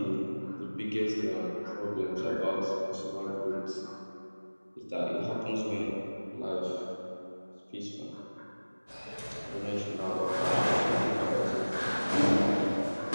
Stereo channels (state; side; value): inverted; both; correlation -1.00